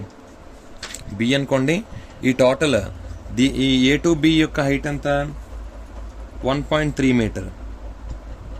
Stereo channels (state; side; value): identical; both; correlation 1.00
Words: బి అనుకోండి. ఈ టోటల్ ఈ ఏ టు బి యొక్క హైట్ ఎంత 1.3 meter.